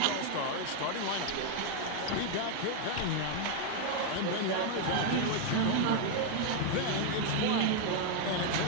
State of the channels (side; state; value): both; different; correlation 0.01